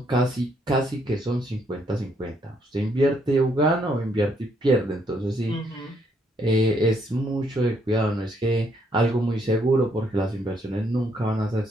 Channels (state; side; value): normal; both; correlation 0.71